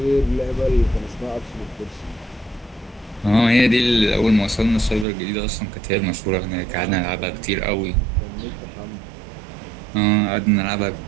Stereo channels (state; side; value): drops out; left; at 5.1 s